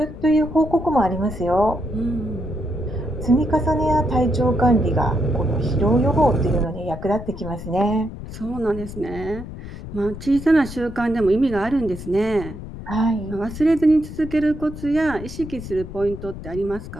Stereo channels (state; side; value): noise; left; rumble, 11 dB below the sound